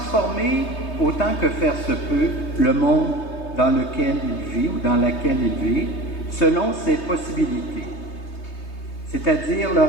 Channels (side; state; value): right; late; 3.2 ms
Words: autant que faire se peut le monde dans lequel il vit ou dans laquelle il vit, selon ses possibilités, c'est-à-dire le